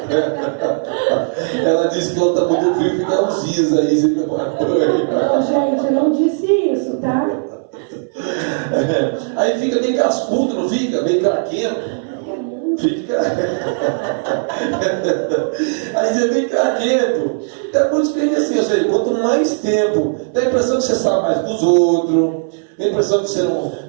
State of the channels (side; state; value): left; silent; 63 dB below the other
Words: Ela disse que ela está muito frio, fica uns dias aí sem tomar banho. Não, gente, eu não disse isso, tá? Aí fica meio cascudo, não fica? Meio craquento. Fica. Aí você vem craquento. Então, por isso que ele assim, ou seja, quanto mais tempo, dá a impressão que você sabe mais dos outros, dá a impressão que